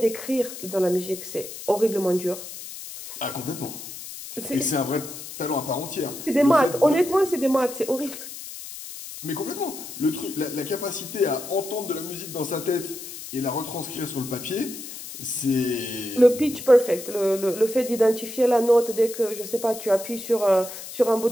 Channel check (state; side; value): noise; left; hiss, 11 dB below the sound